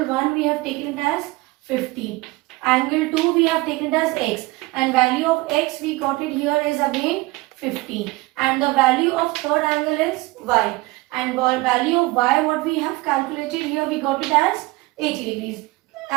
1 we have taken it as 50. Angle 2 we have taken it as x and value of x we got it here is again 50 and the value of third angle is y and value of y what we have calculated here we got it as 80 degrees.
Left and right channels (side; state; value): left; quieter; 21.8 dB